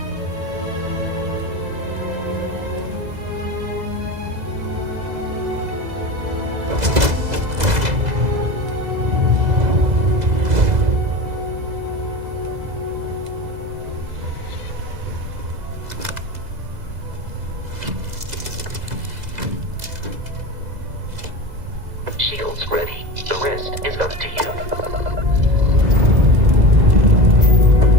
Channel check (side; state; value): left; late; 2.0 ms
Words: Shields ready. The rest is up to you.